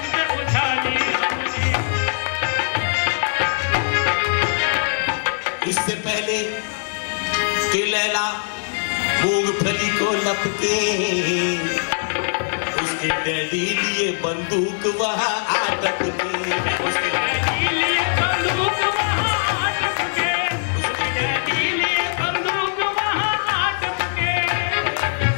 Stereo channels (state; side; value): silent; right; digital silence